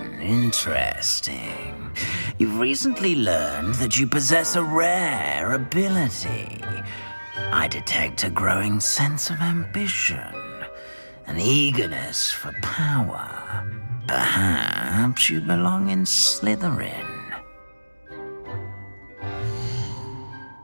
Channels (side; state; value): both; inverted; correlation -1.00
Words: Interesting. You've recently learned that you possess a rare ability. I detect a growing sense of ambition, an eagerness for power. Perhaps you belong in Slytherin.